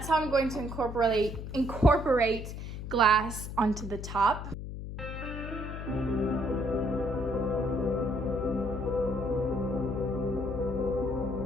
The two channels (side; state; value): left; noise; hum, 8 dB below the sound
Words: how I'm going to incorporate glass onto the top.